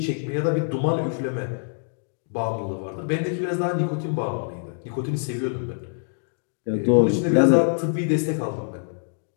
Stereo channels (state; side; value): silent; right; digital silence